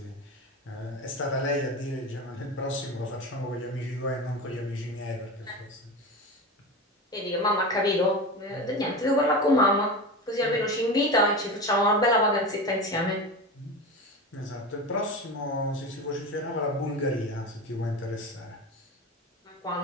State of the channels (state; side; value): normal; both; correlation 0.26